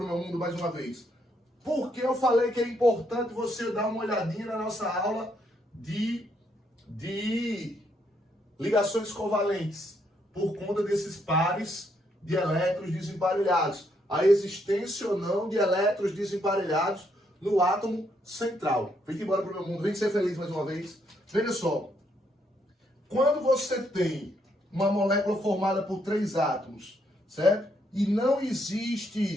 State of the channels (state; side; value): normal; both; correlation 0.74